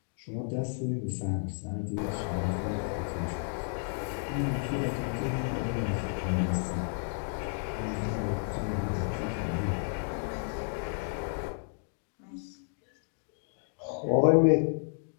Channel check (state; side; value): silent; right; digital silence